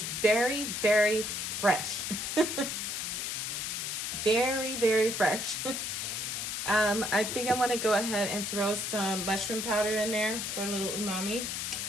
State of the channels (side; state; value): left; noise; hiss, 3 dB below the sound